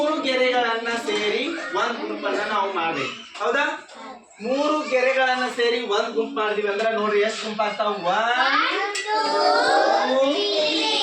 ಗೆರೆಗಳನ್ನ ಸೇರಿ ಒಂದ್ ಗುಂಪನ್ನ ನಾವು ಮಾಡ್ಬೇಕು. ಹೌದಾ? 3 ಗೆರೆಗಳನ್ನ ಸೇರಿ ಒಂದ್ ಗುಂಪು ಮಾಡಿದ್ವಿ ಅಂದ್ರೆ ನೋಡ್ರಿ ಎಷ್ಟು ಗುಂಪ ಆಗ್ತಾವ? 1 2 3.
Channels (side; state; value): both; identical; correlation 1.00